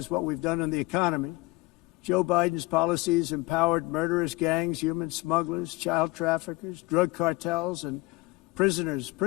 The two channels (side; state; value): right; quieter; 21.8 dB